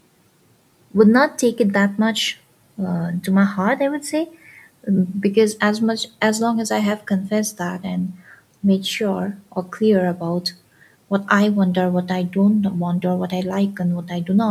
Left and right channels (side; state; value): both; identical; correlation 1.00